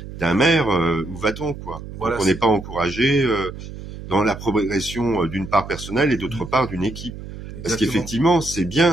d'un maire, où va-t-on, quoi? Voilà, donc on n'est pas encouragé dans la progression d'une part personnelle et d'autre part d'une équipe. Parce exactement. qu'effectivement, c'est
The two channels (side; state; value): right; noise; hum, 12 dB below the sound